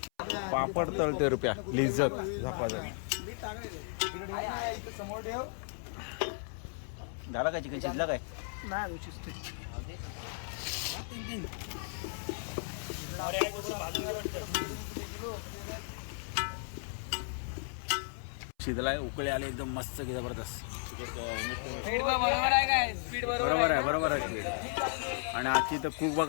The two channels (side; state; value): right; silent; 55 dB below the other